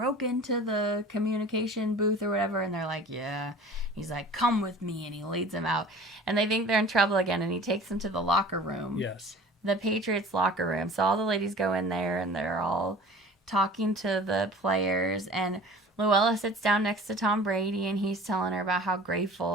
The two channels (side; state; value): both; normal; correlation 0.43